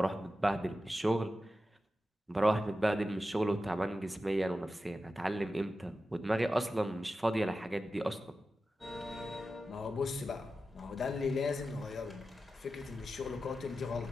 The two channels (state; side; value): normal; both; correlation 0.92